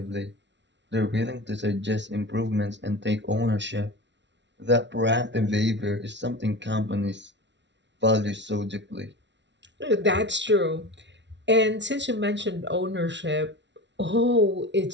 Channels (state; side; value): late; left; 0.51 ms